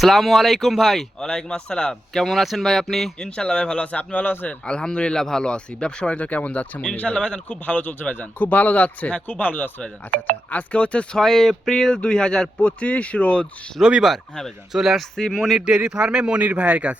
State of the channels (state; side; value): normal; both; correlation 0.88